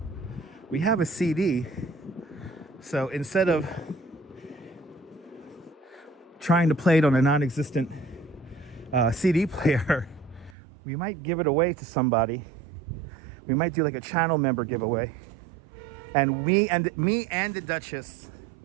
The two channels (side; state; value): left; drops out; at 10.6 s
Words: we have a CD. So instead of trying to play it on a non-existent CD player, we might give it away to somebody. We might do like a channel member giveaway, and me and the Duchess